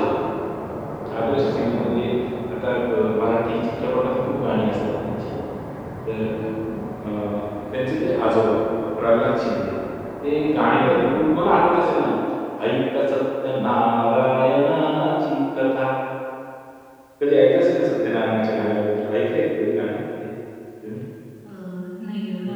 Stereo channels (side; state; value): both; identical; correlation 1.00